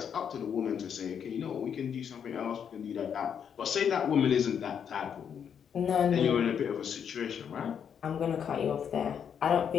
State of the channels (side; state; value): right; quieter; 7.8 dB